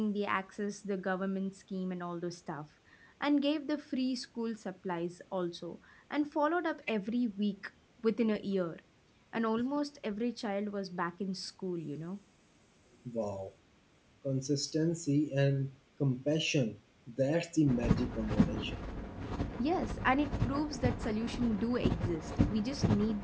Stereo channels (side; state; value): both; identical; correlation 1.00